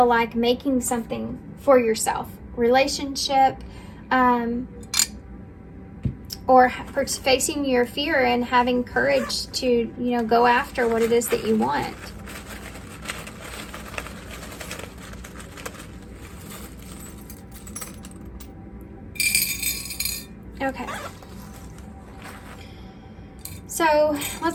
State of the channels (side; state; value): both; identical; correlation 1.00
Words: like making something for yourself. Relationship, or facing your fear and having courage to, go after what it is that you want. Okay. So